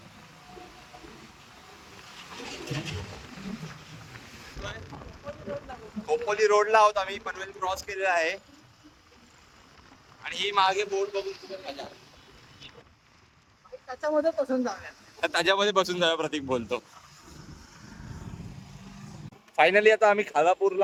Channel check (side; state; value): both; identical; correlation 1.00